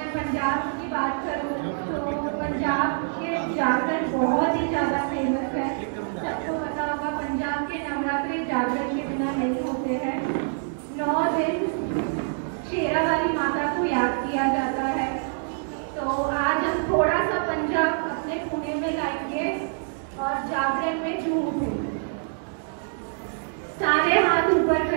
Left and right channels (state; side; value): silent; left; digital silence